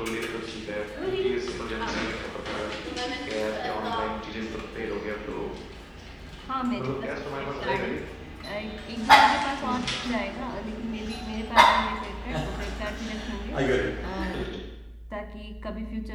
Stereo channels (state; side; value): identical; both; correlation 1.00